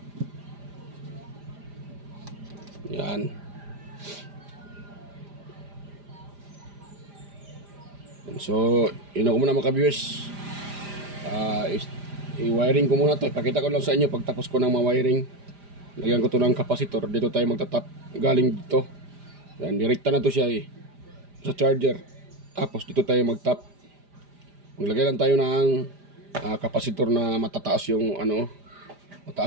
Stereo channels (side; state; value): left; late; 5.0 ms